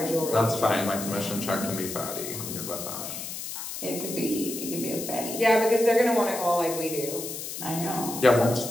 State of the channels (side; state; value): left; noise; hiss, 7 dB below the sound